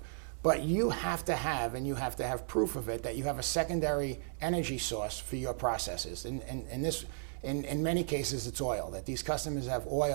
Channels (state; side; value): silent; left; 55 dB below the other